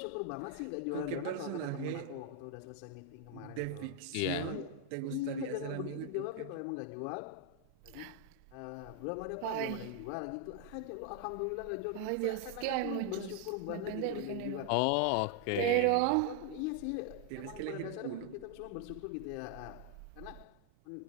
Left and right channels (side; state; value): both; different; correlation 0.00